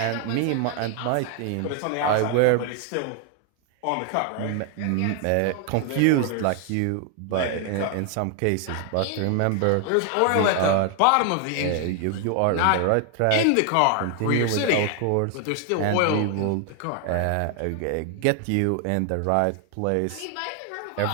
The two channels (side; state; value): both; different; correlation 0.00